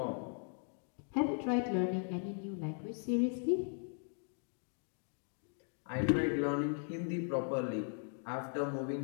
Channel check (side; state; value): right; silent; 52 dB below the other